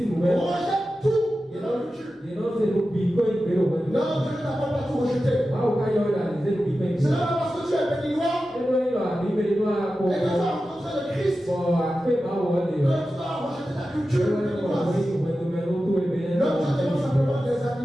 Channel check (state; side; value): normal; both; correlation 0.93